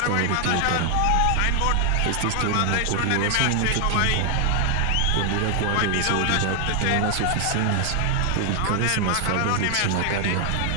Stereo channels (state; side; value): different; both; correlation 0.00